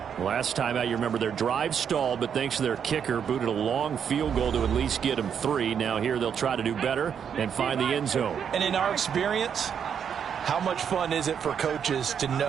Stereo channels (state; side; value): quieter; left; 7.8 dB